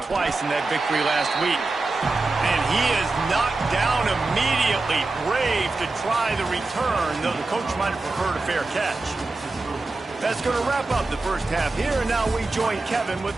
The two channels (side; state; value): left; quieter; 3.4 dB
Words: twice in that victory last week. And he is knocked down immediately. Brave to try the return, though the coach might have preferred a fair catch. That's going to wrap up the first half here, and now we join Kevin with